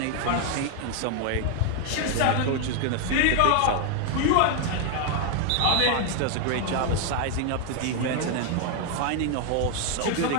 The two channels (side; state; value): both; different; correlation 0.00